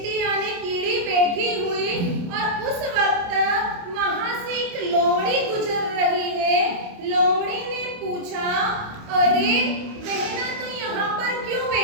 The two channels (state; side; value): late; left; 28 ms